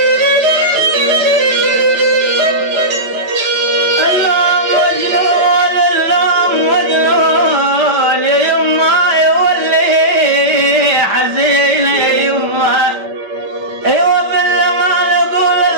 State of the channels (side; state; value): left; late; 5.0 ms